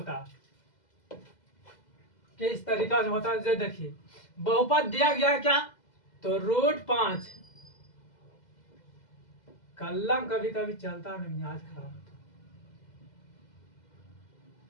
है, किस तरीका से होता है। जो देखिए बहुपद दिया गया है क्या, तो √5, कलम कभी कभी चलता नहीं, आज खराब होता।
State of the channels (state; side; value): late; right; 2.0 ms